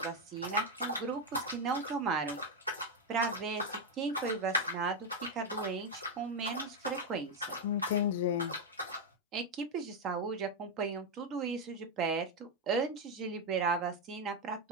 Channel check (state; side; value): normal; both; correlation 0.04